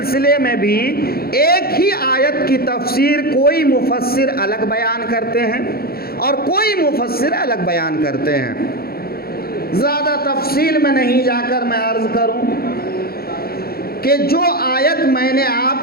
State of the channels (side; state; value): right; late; 0.44 ms